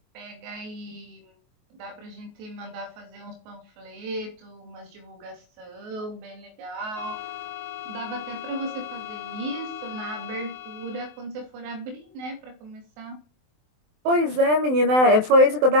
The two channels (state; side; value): late; left; 23 ms